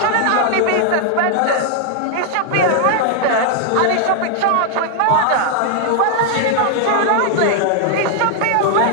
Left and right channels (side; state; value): both; different; correlation 0.00